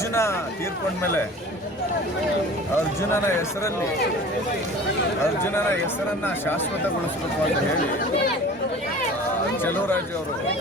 ತೀರ್ಕೊಂಡ್ಮೇಲೆ ಅರ್ಜುನನ ಹೆಸರನ್ನು ಶಾಶ್ವತಗೊಳಿಸಬೇಕು ಅಂತ ಹೇಳಿ ಚೆಲುವರಾಜ್ ಅವರು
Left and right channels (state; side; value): normal; both; correlation 0.42